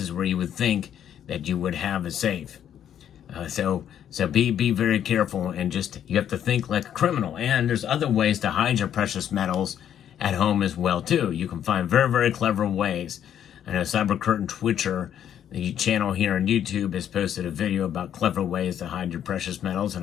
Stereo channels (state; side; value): quieter; right; 9.8 dB